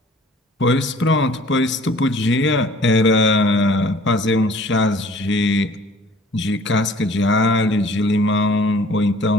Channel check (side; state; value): both; normal; correlation 0.52